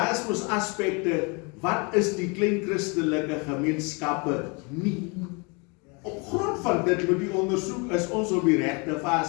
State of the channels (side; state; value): right; quieter; 30.7 dB